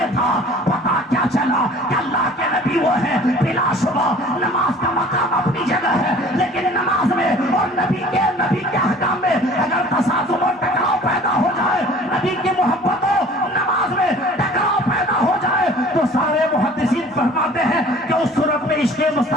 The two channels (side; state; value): both; normal; correlation 0.48